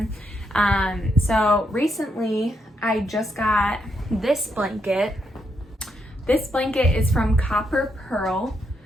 So recently I just got this blanket. This blanket is from Copper Pearl.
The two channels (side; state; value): both; normal; correlation 0.79